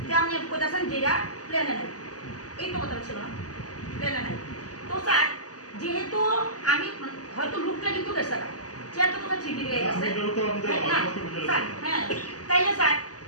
যে আপনি কোথাছেন যেটা প্লেনে নেই, এই তো কথা ছিল না, প্লেনে নেই। তো স্যার যেহেতু আমি হয়তো লুকটা কিন্তু গেছে না, চেয়ারটা কোথায় ঠিক হয়ে গেছে স্যার, হ্যাঁ তাইলে স্যার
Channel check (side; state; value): right; late; 0.67 ms